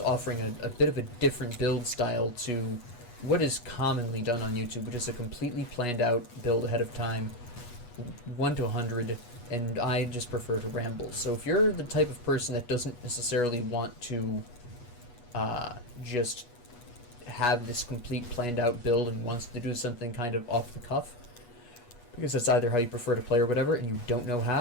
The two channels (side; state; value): right; late; 8.2 ms